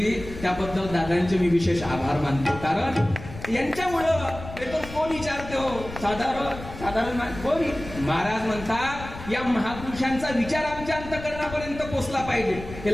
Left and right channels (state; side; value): noise; left; rumble, 12 dB below the sound